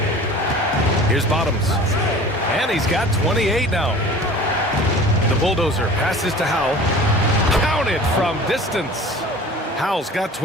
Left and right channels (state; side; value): normal; both; correlation 0.42